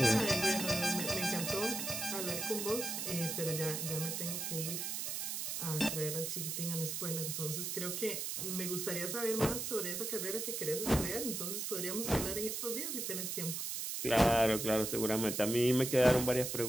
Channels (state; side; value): noise; right; hiss, 3 dB below the sound